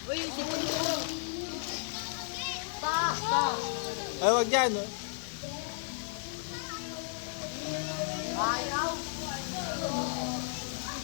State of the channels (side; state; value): right; silent; digital silence